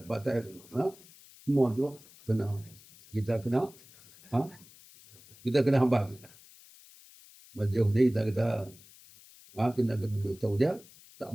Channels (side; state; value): left; noise; hiss, 23 dB below the sound